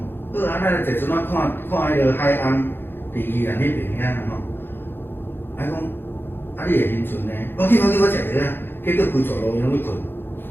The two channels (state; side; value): late; right; 0.10 ms